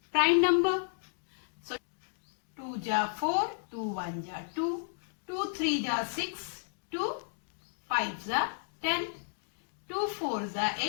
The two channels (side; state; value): right; silent; digital silence